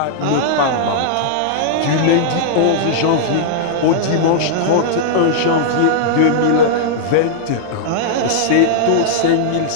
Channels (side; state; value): both; different; correlation -0.02